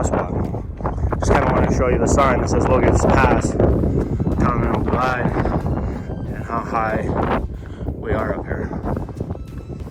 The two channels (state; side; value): identical; both; correlation 1.00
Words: Just kind of want to show you the sign that says Logan Pass. Continental Glide, and how high we are up here.